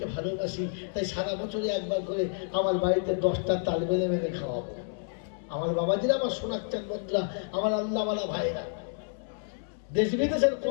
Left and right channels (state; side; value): silent; right; 58 dB below the other